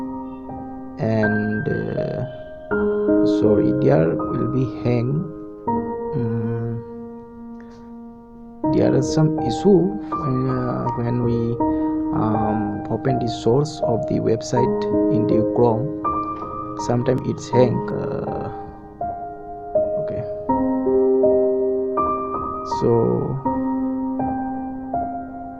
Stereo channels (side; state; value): both; identical; correlation 1.00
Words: and sorry, there will be hang. There is some issue when we open the source of the website in the Chrome. Sometimes it's hang. Okay, so